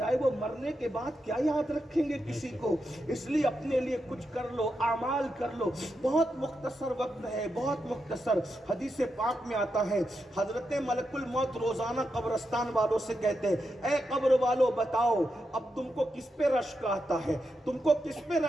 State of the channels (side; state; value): both; normal; correlation 0.86